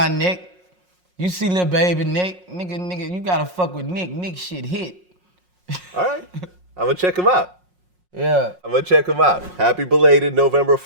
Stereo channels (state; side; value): late; left; 5.5 ms